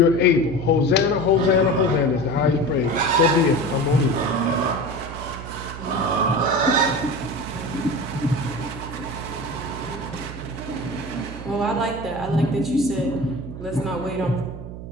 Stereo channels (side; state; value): right; noise; hum, 11 dB below the sound